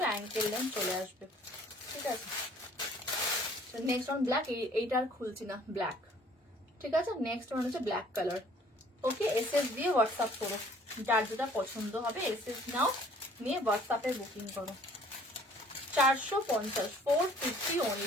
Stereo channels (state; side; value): normal; both; correlation 0.56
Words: অ্যাঙ্কেল লেন্থ চলে আসবে। ঠিক আছে, নেক্সট ওয়ান ব্ল্যাক। এইটা আর খুলছি না, ব্ল্যাক। ঠিক আছে, নেক্সট ওয়ান হচ্ছে ব্ল্যাক কালার। ওকে, এসএস দিয়ে হোয়াটসঅ্যাপ করো, যার যেটা পছন্দ হবে এসএস নাও, নিয়ে হোয়াটসঅ্যাপে বুকিং করো। 450, 450